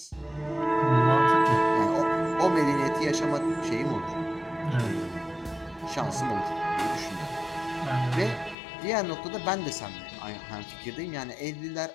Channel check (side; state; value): right; drops out; at 8.6 s